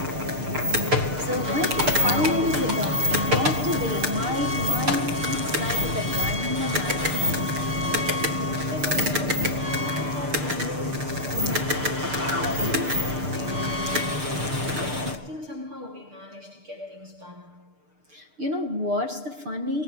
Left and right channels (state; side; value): late; left; 6.7 ms